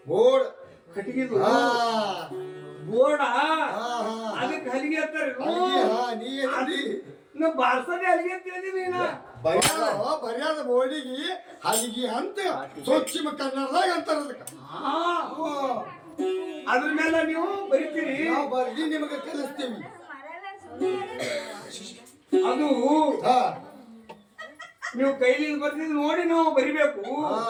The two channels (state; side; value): identical; both; correlation 1.00